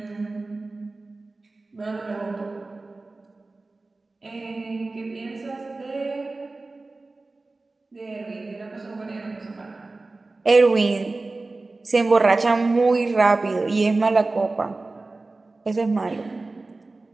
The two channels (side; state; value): left; quieter; 3.3 dB